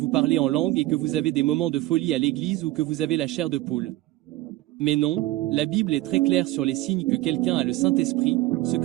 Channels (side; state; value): left; quieter; 16.9 dB